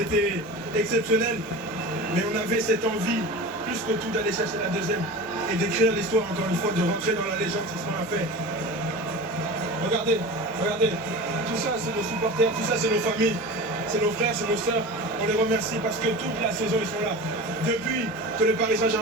exceptionnel. Mais on avait cette envie, plus que tout, d'aller chercher la deuxième. Et d'écrire l'histoire, encore une fois, de rentrer dans la légende, c'est ce qu'on a fait. Regardez, regardez. Tout ça, c'est nos supporters, tout ça, c'est nos familles. C'est nos frères, c'est nos sœurs. On les remercie parce que toute la saison, ils sont là. Depuis que le Paris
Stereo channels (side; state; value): both; normal; correlation 0.32